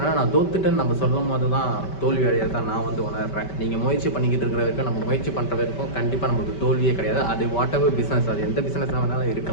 நான் தோத்துட்டேன்னு நம்ம சொல்லும் போது தான் தோல்வி அடையிறதான் நான் வந்து உணர்றேன். நீங்கள் முயற்சி பண்ணிக்கிட்டு இருக்கிற வரைக்கும், நம்ம முயற்சி பண்ணுற வரைக்கும் கண்டிப்பாக நமக்கு தோல்வியே கிடையாது. அது வாட் எவர் பிஸ்னஸ், அது எந்த பிஸ்னஸாக வேணாலும்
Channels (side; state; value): right; late; 5.2 ms